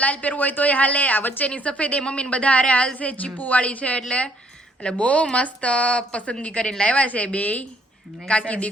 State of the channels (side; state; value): both; normal; correlation 0.66